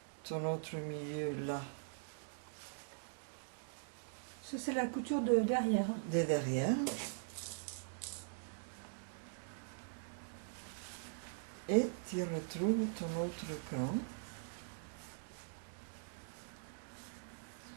ton autre milieu là, Ça, c'est la couture de derrière. de derrière. Et tu retrouves ton autre cran.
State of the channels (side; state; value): left; silent; digital silence